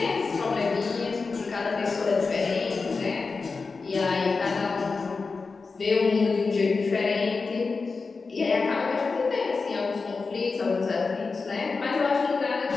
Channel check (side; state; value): right; quieter; 4.4 dB